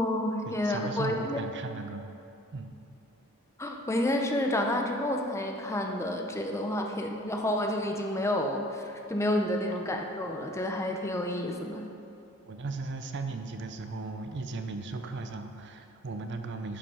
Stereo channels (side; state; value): both; normal; correlation 0.53